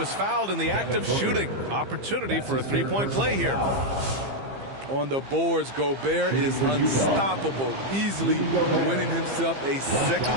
fouled in the act of shooting. Opportunity for a 3-point play here. On the boards, Gobert is unstoppable, easily winning himself a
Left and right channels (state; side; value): late; left; 15 ms